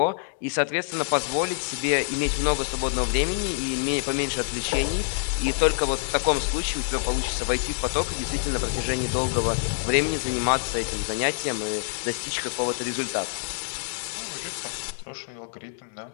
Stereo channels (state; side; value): silent; right; digital silence